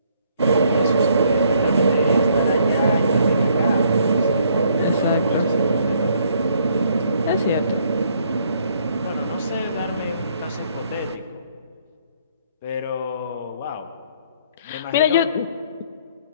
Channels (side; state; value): both; inverted; correlation -0.66